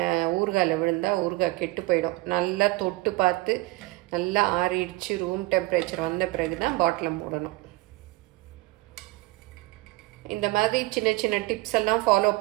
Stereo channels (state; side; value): quieter; left; 20.9 dB